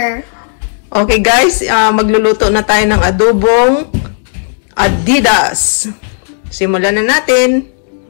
Okay guys, magluluto na tayo ng adobong adidas. Simulan na natin.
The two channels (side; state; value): right; silent; 66 dB below the other